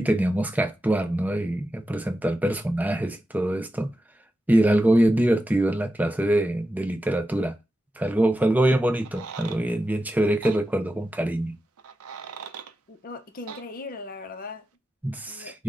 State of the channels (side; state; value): both; normal; correlation 0.91